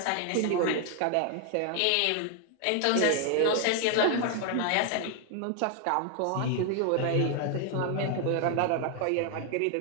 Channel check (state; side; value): different; both; correlation 0.00